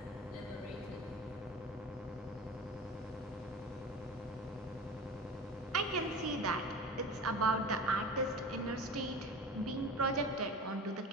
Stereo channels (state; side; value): normal; both; correlation 0.35